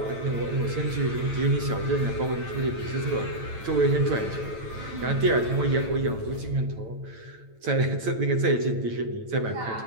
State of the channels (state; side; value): late; left; 9.0 ms